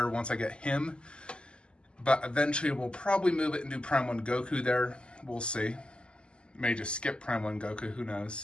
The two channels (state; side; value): late; right; 0.050 ms